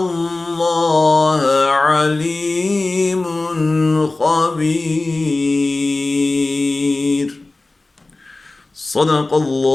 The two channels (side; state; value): right; quieter; 3.1 dB